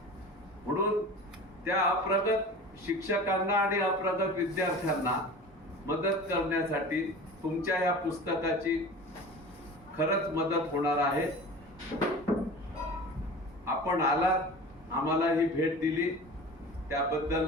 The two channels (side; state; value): both; normal; correlation 0.36